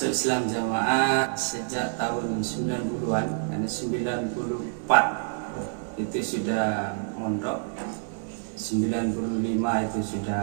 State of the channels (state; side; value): silent; left; digital silence